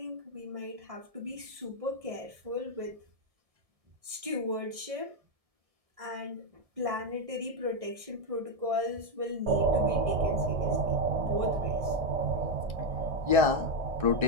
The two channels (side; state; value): left; late; 1.7 ms